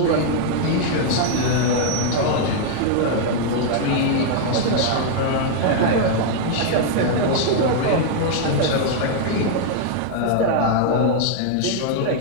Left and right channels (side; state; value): both; different; correlation 0.00